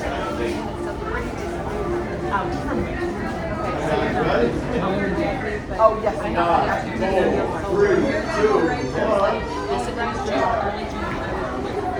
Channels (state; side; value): identical; both; correlation 1.00